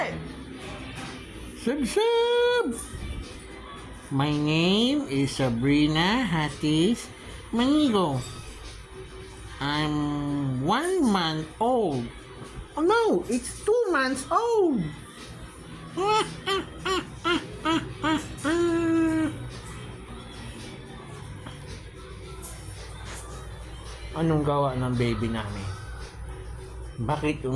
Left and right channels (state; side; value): identical; both; correlation 1.00